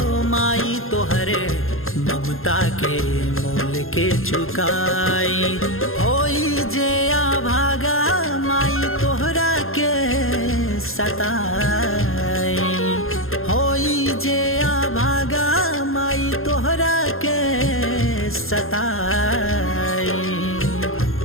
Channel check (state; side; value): late; right; 0.61 ms